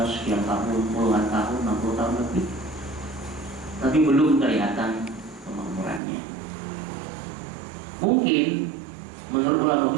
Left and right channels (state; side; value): drops out; left; at 6.0 s